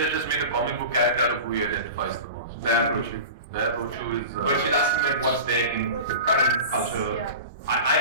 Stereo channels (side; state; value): both; inverted; correlation -0.33